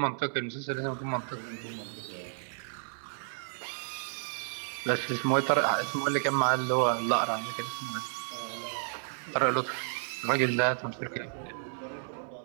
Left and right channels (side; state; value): left; silent; 57 dB below the other